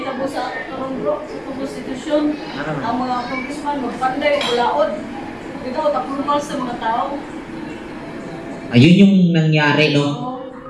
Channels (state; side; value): identical; both; correlation 1.00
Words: tabo sa karong bro, sa konstitusyon, ang mga congressman magpanday ulaod. Ito tapulmal sa mga tao. Ayun yung nangyari, no?